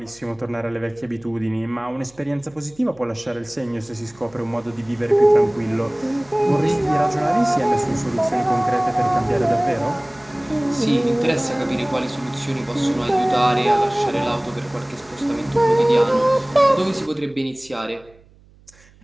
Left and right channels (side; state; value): right; noise; hum, 28 dB below the sound